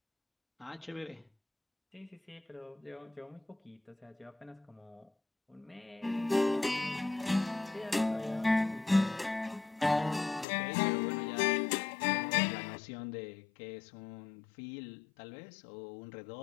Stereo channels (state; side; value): drops out; right; at 10.5 s